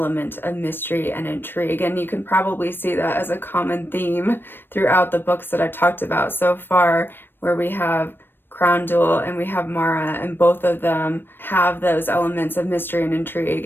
of mystery and intrigue, and you can probably see that as a common theme throughout the books that I've talked about so far, where we have Crown Jewel and we have Mara, and both of them have those elements of mystery and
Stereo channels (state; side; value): late; right; 0.097 ms